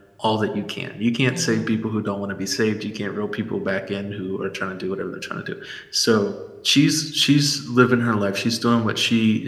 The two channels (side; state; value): both; identical; correlation 1.00